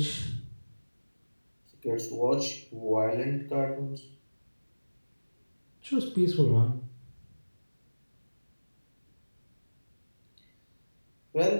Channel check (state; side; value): inverted; both; correlation -1.00